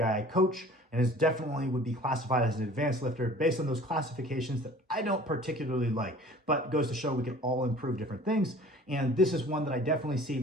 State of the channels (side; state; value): both; normal; correlation 0.47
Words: I coach and is definitely would be classified as an advanced lifter based on those classifications that I don't particularly like, but goes to show we can all improve different things. And this is one that I definitely see